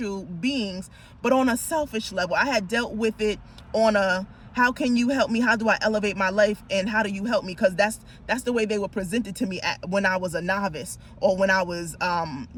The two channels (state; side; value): identical; both; correlation 1.00